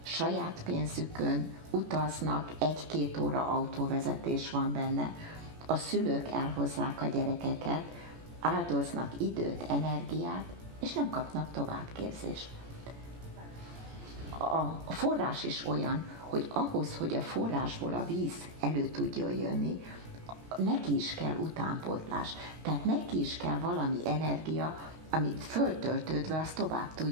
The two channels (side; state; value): left; late; 17 ms